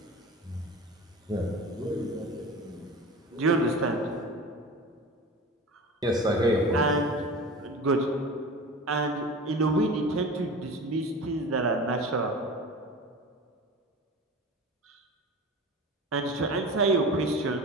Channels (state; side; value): normal; both; correlation 0.34